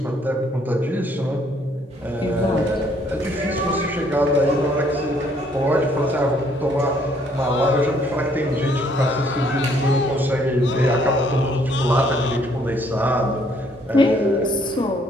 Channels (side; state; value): both; normal; correlation 0.65